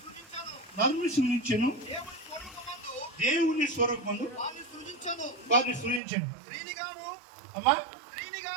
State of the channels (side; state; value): left; drops out; at 6.0 s